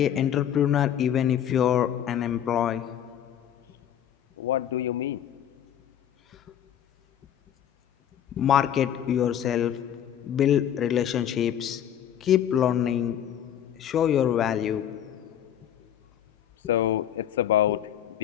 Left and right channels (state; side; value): quieter; right; 10.1 dB